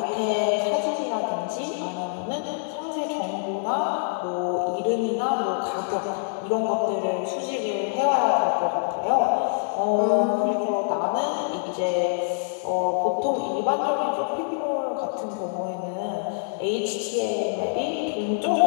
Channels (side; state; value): right; silent; digital silence